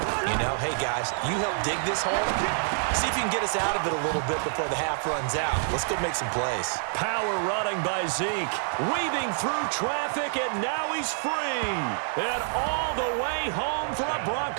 You know, hey, guys, you help dig this hole. See if you can get us out of it a little bit before the half runs out. Let's go make some plays. Power running by Zeke. Weaving through traffic, and now he's free. And all the way home for a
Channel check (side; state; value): left; silent; digital silence